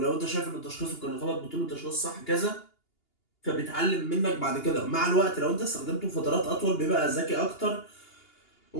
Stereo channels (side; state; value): right; late; 2.8 ms